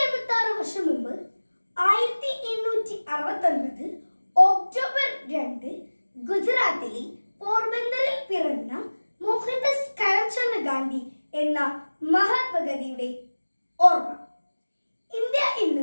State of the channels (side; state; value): both; inverted; correlation -1.00